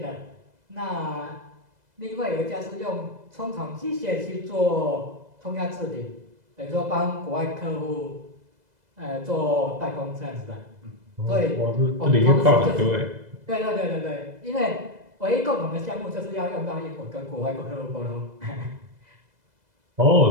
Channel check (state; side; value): late; left; 2.0 ms